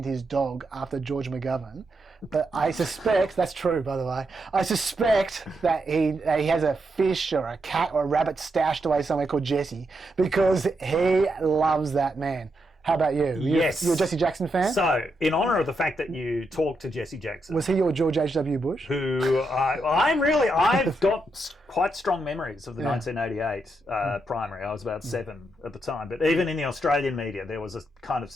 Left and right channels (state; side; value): normal; both; correlation 0.82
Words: his dog after George McGovern, but I suspect that's true. By the way, I suspect that he has a fish or a cat or a rabbit stashed away somewhere called Jesse because he loves that man. How about you? Yes. You're a Jesse Jackson fan? So, in honour of the fact that you talked to Jesse Jackson... Was he your George H.W. Bush? I've got quite strong memories of the 1988 primary. I was about 7 at the time. But even in the Australian media, there was a kind of